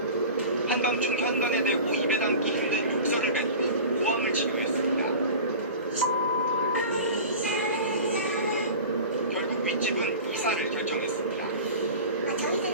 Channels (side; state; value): both; inverted; correlation -0.36